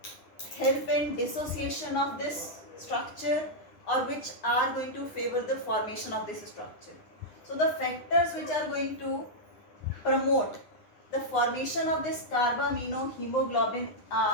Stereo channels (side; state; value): right; late; 9.7 ms